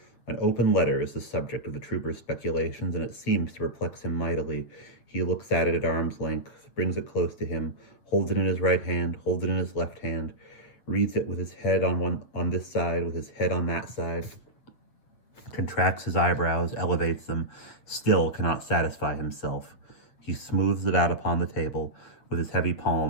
An open letter is the subject of the trooper's speculations, and it seems to perplex him mightily. He looks at it at arm's length, brings it close to him, holds it in his right hand, holds it in his left hand, reads it with his head on this side, with his head on that side, contracts his eyebrows, elevates them, still cannot satisfy himself. He smooths it out upon the table with his heavy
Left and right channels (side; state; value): right; late; 8.0 ms